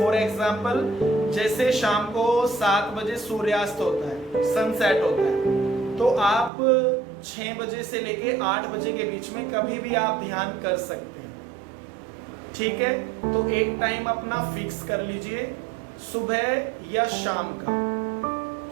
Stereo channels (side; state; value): left; drops out; at 6.5 s